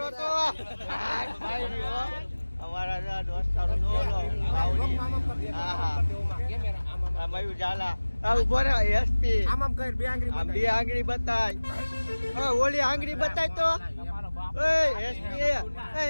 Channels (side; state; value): both; inverted; correlation -1.00